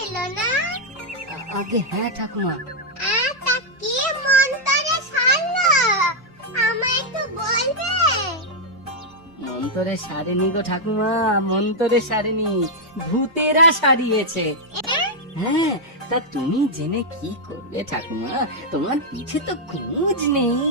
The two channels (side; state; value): both; normal; correlation -0.03